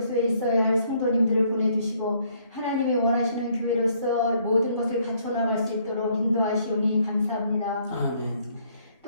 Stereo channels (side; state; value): both; inverted; correlation -0.67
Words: 있어야 할 성도님들을 보내주시고 하나님이 원하시는 교회로서 모든 것을 갖춰나갈 수 있도록 인도하시오니 감사합니다. 아멘.